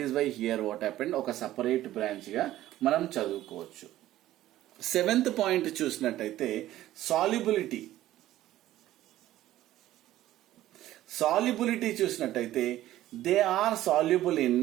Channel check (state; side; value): quieter; left; 14.3 dB